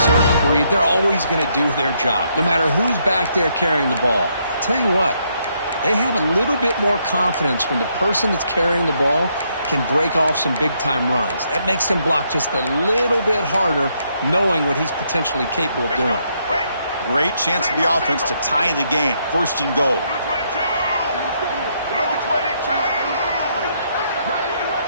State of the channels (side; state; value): both; inverted; correlation -0.74